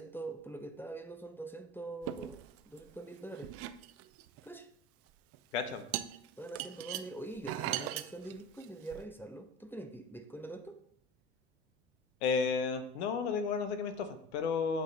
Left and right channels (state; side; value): normal; both; correlation 0.34